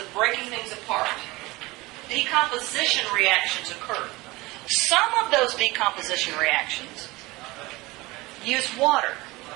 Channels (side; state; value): left; quieter; 21.6 dB